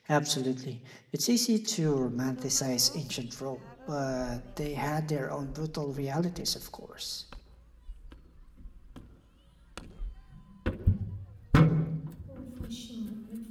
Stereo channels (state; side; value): identical; both; correlation 1.00